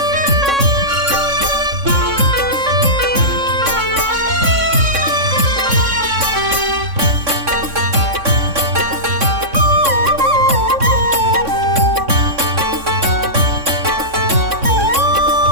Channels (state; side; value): late; left; 3.6 ms